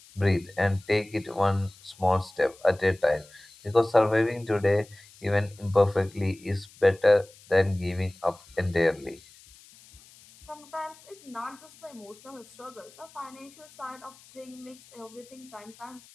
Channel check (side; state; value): left; noise; hiss, 24 dB below the sound